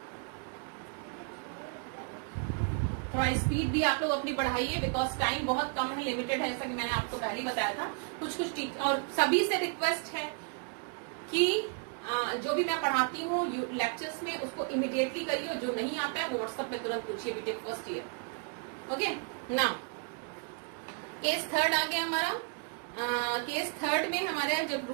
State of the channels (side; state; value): left; quieter; 39.3 dB